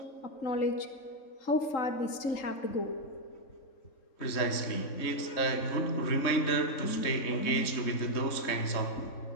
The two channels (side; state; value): right; late; 3.6 ms